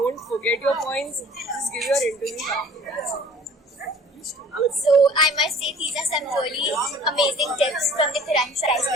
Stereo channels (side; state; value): both; normal; correlation 0.50